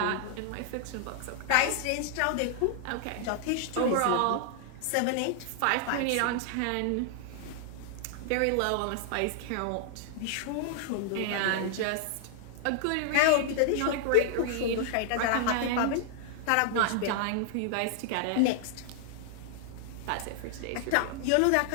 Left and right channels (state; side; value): different; both; correlation -0.01